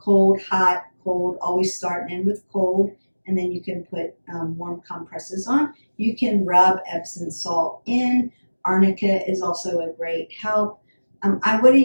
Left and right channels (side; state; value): both; inverted; correlation -1.00